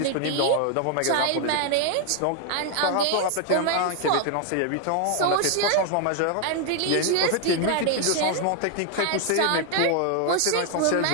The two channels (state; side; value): different; both; correlation 0.00